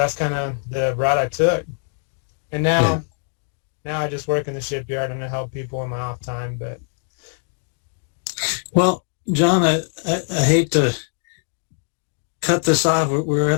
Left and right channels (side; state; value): right; silent; 64 dB below the other